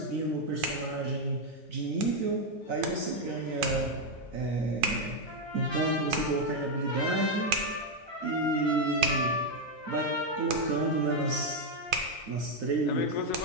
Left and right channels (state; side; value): normal; both; correlation 0.03